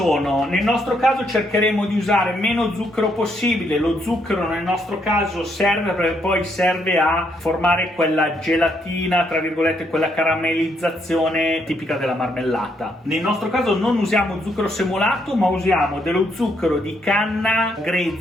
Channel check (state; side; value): normal; both; correlation 0.74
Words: Nel nostro caso cercheremo di usare meno zucchero possibile. Lo zucchero nel nostro caso serve perché poi serve a formare quella gelatina, tra virgolette, quella caramellizzazione tipica della marmellata. Nel nostro caso non usiamo zucchero semolato, ma usiamo dello zucchero di canna